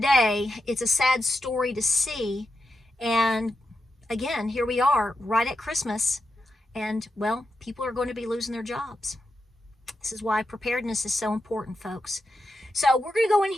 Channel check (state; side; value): normal; both; correlation 0.87